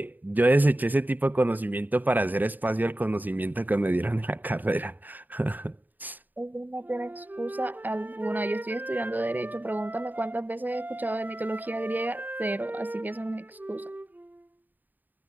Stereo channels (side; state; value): left; late; 0.086 ms